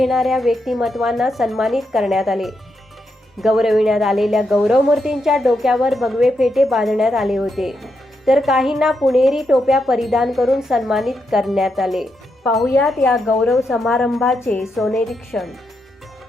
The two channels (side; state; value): both; normal; correlation 0.83